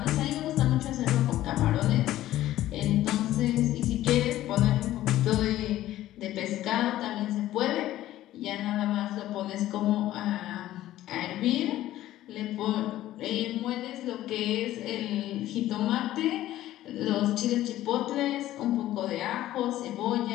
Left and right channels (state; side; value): quieter; right; 14.3 dB